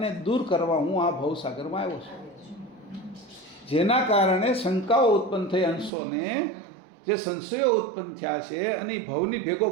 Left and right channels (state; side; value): drops out; left; at 5.9 s